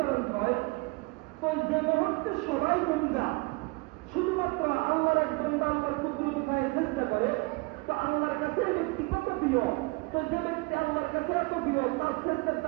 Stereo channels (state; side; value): quieter; left; 26.3 dB